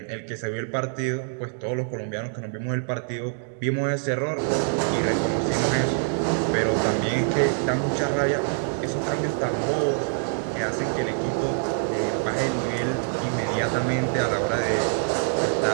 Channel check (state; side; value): silent; left; digital silence